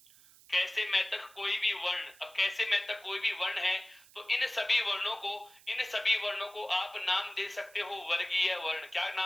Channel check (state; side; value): noise; right; hiss, 24 dB below the sound